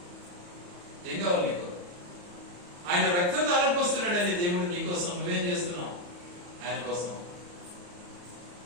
ఏం కావాలి నీకు? ఆయన రక్తం ధారపోస్తున్నాడని దేవుడు నీకోసం. నువ్వేం చేస్తున్నావు ఆయన కోసం?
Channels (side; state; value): left; late; 34 ms